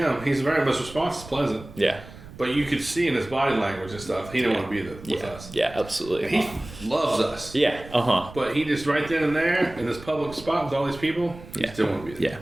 he's very much response is pleasant. Yeah. But you could see in his body language and stuff, he didn't want to be with us. Yeah, absolutely. And he loves us. Yeah, But he just right then and there in this public spot with all these people, he just didn't want to be there. Yeah.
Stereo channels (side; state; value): right; noise; rumble, 17 dB below the sound